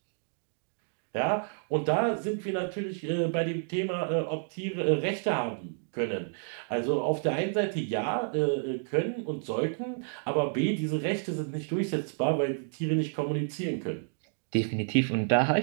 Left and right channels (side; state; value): left; silent; 58 dB below the other